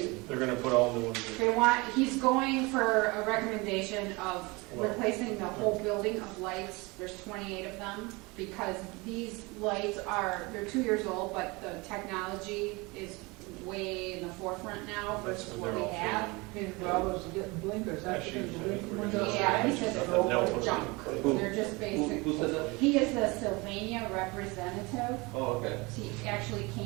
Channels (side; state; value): left; quieter; 25.4 dB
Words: They're gonna put all new ones in. They want, he's going for a recommendation of replacing the whole building of lights, there's 28 of them, because these lights are, they're 2 years old, but the technology is way in the forefront now versus That's what when we they're all have. His brothers are getting blinkers, that's Actually, because the I think blinking we're windows. Yeah, he said they're They'll all put junk, it Who- they're just basic. who said that? He is the Sylvania representative, oh, okay, he actually